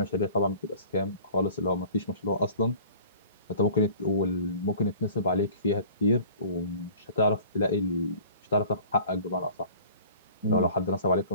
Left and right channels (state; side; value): inverted; both; correlation -0.46